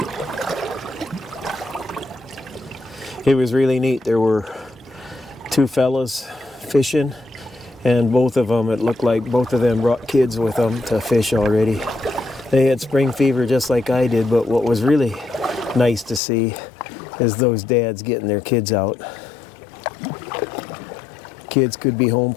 It was really neat. There were 2 fellas fishing, and both of them, it looked like both of them brought kids with them to fish already. They had spring fever just like I did, but what was really nice to see is those dads getting their kids out. Kids could be home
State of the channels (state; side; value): drops out; right; at 16.2 s